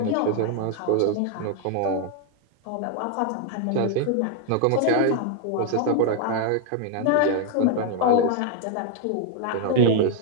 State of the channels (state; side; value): different; both; correlation 0.00